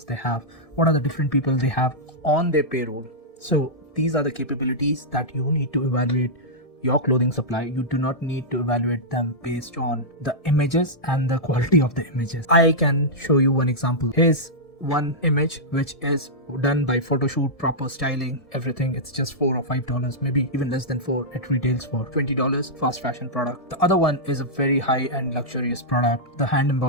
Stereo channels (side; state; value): right; late; 1.7 ms